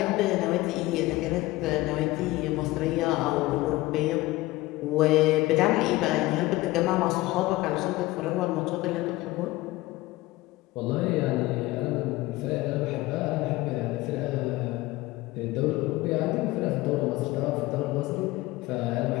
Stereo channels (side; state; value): right; quieter; 19.1 dB